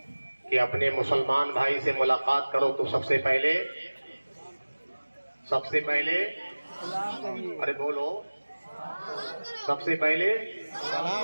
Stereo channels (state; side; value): inverted; both; correlation -1.00